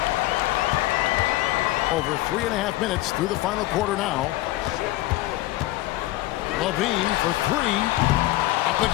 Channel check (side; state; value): right; quieter; 17.5 dB